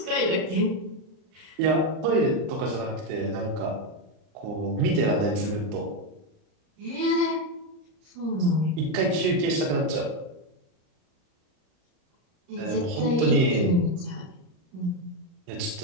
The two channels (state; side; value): late; left; 39 ms